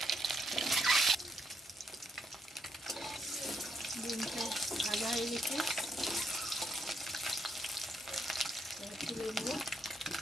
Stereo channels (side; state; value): both; normal; correlation 0.76